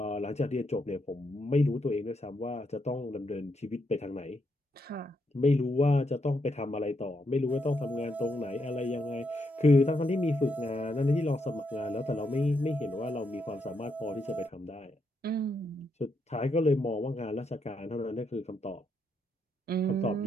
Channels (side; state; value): both; normal; correlation 0.79